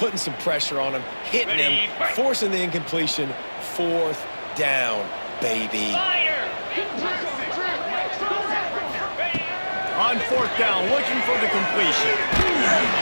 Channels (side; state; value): both; inverted; correlation -1.00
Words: some pressure on him, hitting him, forcing the incompletion. Fourth down, baby. on fourth down, looking for the completion.